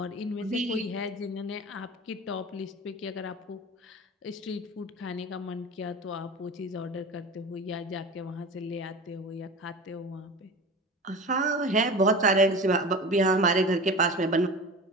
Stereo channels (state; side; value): normal; both; correlation 0.33